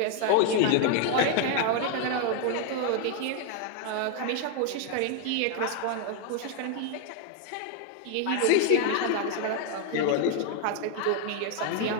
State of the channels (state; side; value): different; both; correlation 0.00